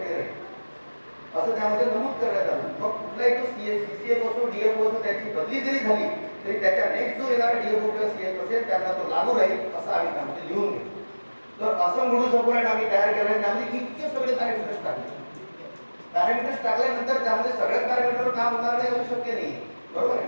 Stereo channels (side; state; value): both; inverted; correlation -1.00